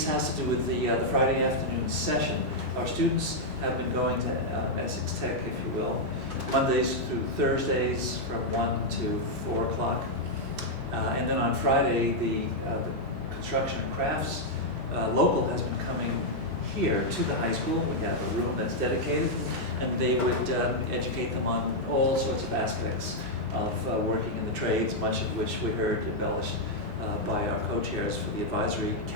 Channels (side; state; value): both; normal; correlation -0.03